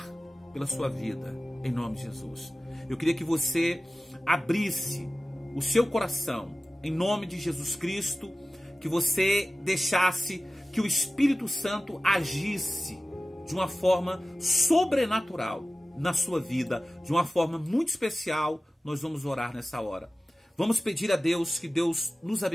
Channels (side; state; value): both; normal; correlation 0.96